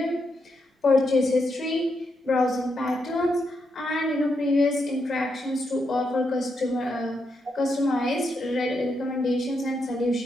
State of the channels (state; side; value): normal; both; correlation 0.82